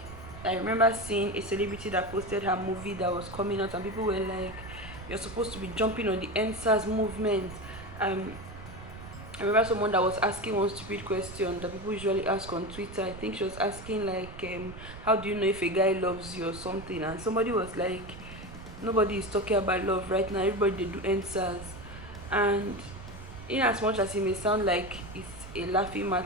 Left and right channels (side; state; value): right; noise; rumble, 14 dB below the sound